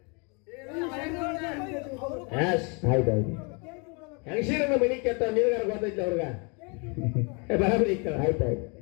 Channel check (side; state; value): right; quieter; 33.4 dB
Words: ಆಯ್ತಾಯ್ತು. ಹೆಂಗಸೀರನ್ನ ಮನಿ ಕೆತ್ತ ನೀರ್ಗಾರ ಗೊತ್ತೈತಿ ಅವ್ರಗ ಬರಾಬರಿ. ಆಯ್ತಾಯ್ತು.